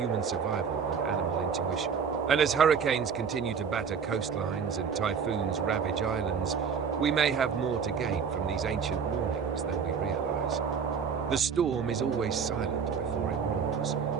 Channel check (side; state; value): left; quieter; 6.5 dB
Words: survival and animal intuition. And as hurricanes continue to batter coastlines and typhoons ravage islands, we may have more to gain from these ancient warnings than we realize. The storm is always silent before it roars.